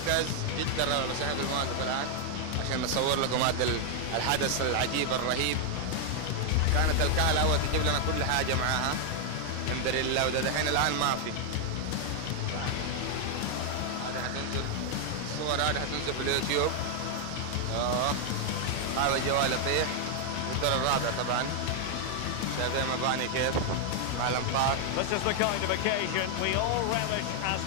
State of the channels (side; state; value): both; different; correlation 0.00